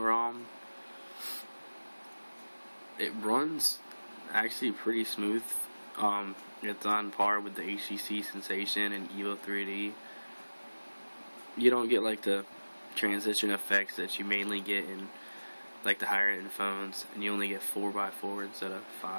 ROM. It runs actually pretty smooth. It's on par with the HTC Sensation and Evo 3D. You don't get like the transition effects that you mainly get in like the higher end phones, and you only get 4x4 instead of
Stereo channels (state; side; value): inverted; both; correlation -1.00